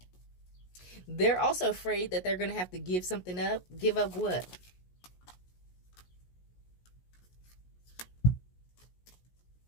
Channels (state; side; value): late; right; 17 ms